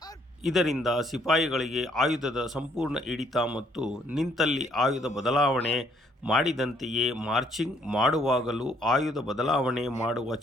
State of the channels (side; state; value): both; normal; correlation 0.66